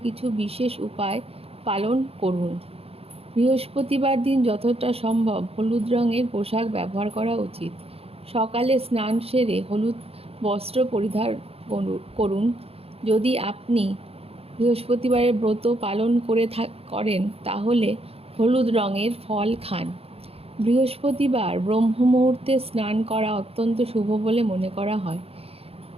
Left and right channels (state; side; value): late; left; 0.29 ms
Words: কিছু বিশেষ উপায় পালন করুন। বৃহস্পতিবার দিন যতটা সম্ভব হলুদ রঙের পোশাক ব্যবহার করা উচিত। সকালে স্নান সেরে হলুদ বস্ত্র পরিধান করুন। যদি আপনি বৃহস্পতিবারের ব্রত পালন করেন তাহলে হলুদ রঙের ফল খান। বৃহস্পতিবার ব্রহ্ম মুহূর্তে স্নান করা অত্যন্ত শুভ বলে মনে করা হয়।